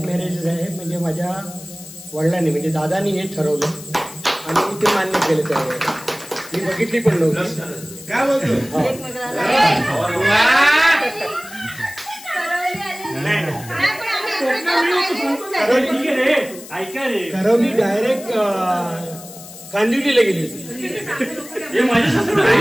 मॅरेज आहे. म्हणजे माझ्या वडिलांनी म्हणजे दादानी हे ठरवलं आणि मी ते मान्य केलं. त्यावेळेस मी बघितली पण नव्हती. काय बोलतो. करवली डायरेक्ट कांदिवलीला गेली होती. हे माझ्या सासू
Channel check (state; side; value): noise; left; hiss, 16 dB below the sound